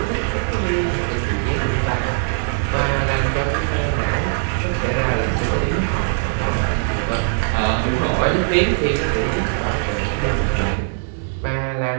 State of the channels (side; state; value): left; silent; digital silence